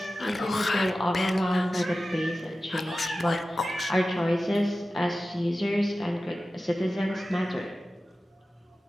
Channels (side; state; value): both; normal; correlation 0.95